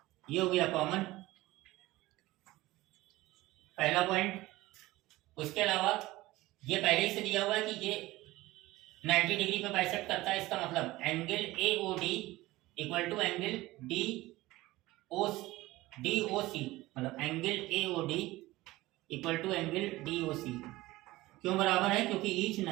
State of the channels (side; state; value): left; quieter; 18.5 dB